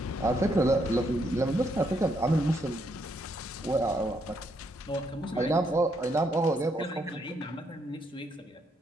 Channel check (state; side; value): normal; both; correlation 0.75